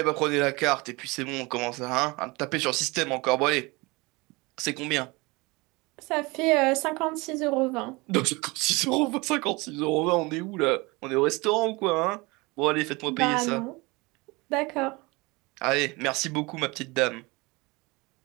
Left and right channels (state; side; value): quieter; left; 24.8 dB